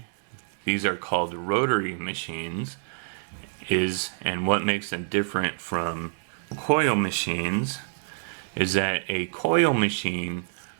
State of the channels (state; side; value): silent; left; 60 dB below the other